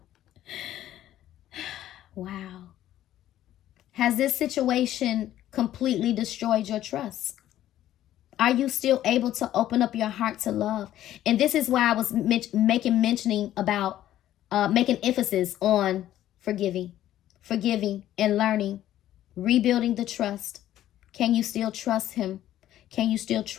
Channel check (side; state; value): right; quieter; 12.7 dB